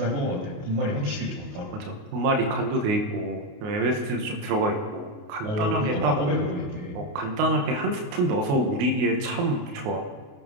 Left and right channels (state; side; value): late; left; 28 ms